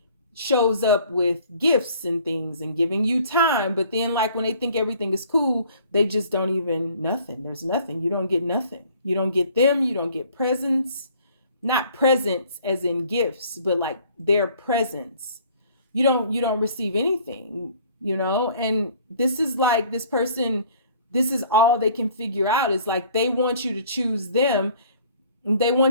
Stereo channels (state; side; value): inverted; both; correlation -0.55